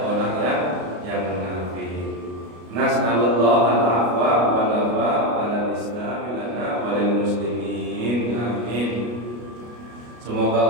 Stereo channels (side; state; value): left; late; 33 ms